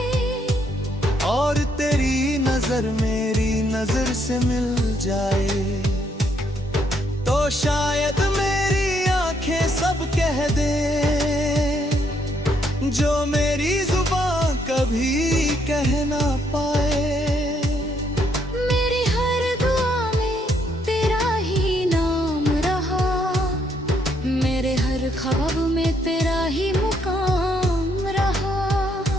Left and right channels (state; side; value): normal; both; correlation 0.72